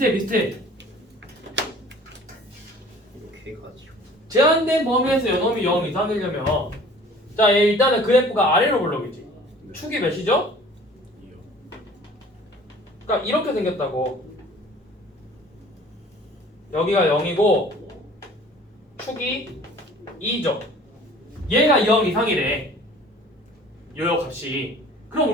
이렇게 해가지고. 제한된 범위에서 요놈이 0 이상이려면 자, 일단은 그래프가 아래로 볼록이지. 축이 몇이죠? 그러니까 이렇게 생겼다고. 여기가 0이고 축이 2죠. 얘가 0 이상이래. 요 값이. 그럼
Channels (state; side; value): normal; both; correlation 0.48